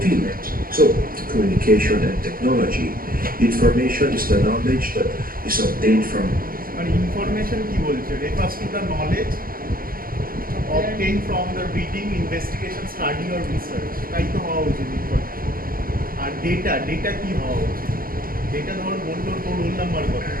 So communication and technology. Information is the knowledge that is obtained from information কি বলছে refers to the knowledge obtained from the reading, investigation, study or research. তাই তো হওয়া উচিত information. আর data কি হওয়া উচিত data ধর বললো তোর রোল নাম্বার কত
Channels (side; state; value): left; late; 0.42 ms